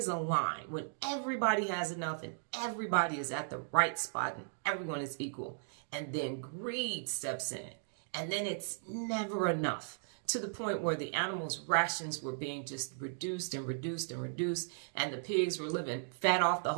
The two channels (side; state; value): left; silent; digital silence